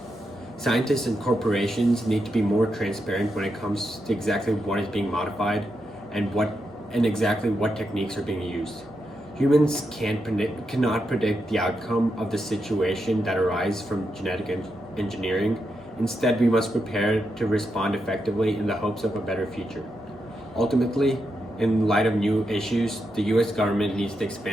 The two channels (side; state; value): both; normal; correlation 0.85